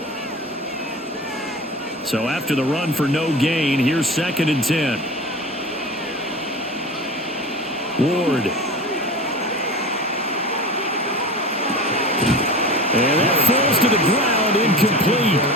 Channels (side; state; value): both; normal; correlation 0.32